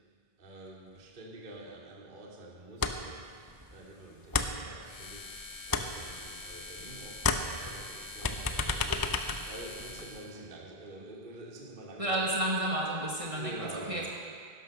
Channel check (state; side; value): late; left; 1.0 ms